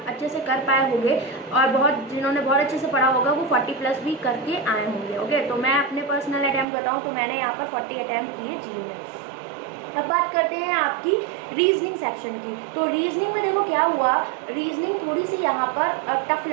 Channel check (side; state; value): left; drops out; at 6.7 s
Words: अच्छे से कर पाए होंगे और बहुत जिन्होंने बहुत अच्छे से पढ़ा होगा वो 40 प्लस भी करके आए होंगे। ओके, तो मैं अपने पर्सनल अटैम्प्ट बताऊँ तो मैंने यहाँ पर 40 अटैम्प्ट किए GA में। अब बात करते हैं आपकी रीजनिंग सेक्शन की। तो रीजनिंग में देखो क्या हुआ, रीजनिंग थोड़ी सी यहाँ पर टफ